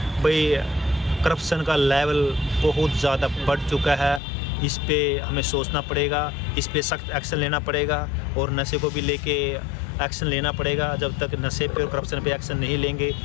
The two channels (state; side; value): drops out; right; at 4.2 s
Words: भाई करप्शन का लेवल बहुत ज़्यादा बढ़ चुका है। इस पे हमें सोचना पड़ेगा, इस पे सख्त एक्शन लेना पड़ेगा और नशे को भी लेके एक्शन लेना पड़ेगा। जब तक नशे पे और करप्शन पे एक्शन नहीं लेंगे